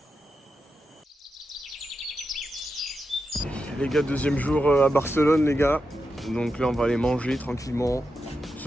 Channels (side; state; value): both; normal; correlation 0.88